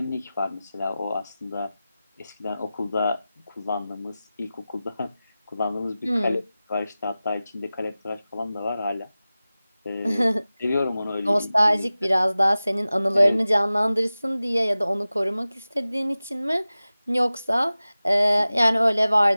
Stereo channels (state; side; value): inverted; both; correlation -0.96